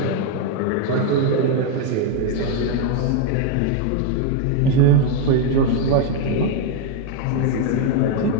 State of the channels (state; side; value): different; both; correlation 0.01